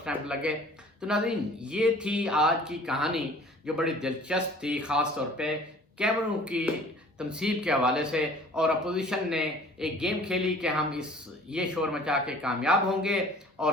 لگے۔ تو ناظرین یہ تھی آج کی کہانی جو بڑی دلچسپ تھی، خاص طور پہ کیمروں کی تنصیب کے حوالے سے، اور اپوزیشن نے ایک گیم کھیلی کہ ہم یہ شور مچا کے کامیاب ہوں گے اور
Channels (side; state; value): both; normal; correlation 0.49